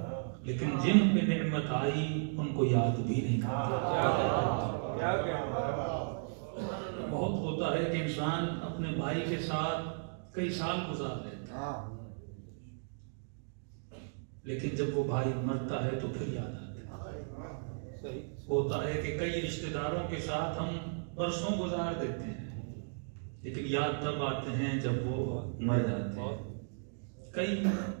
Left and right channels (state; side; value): silent; left; digital silence